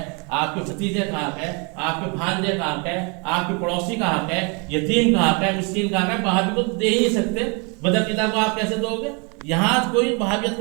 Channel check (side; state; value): left; quieter; 32.9 dB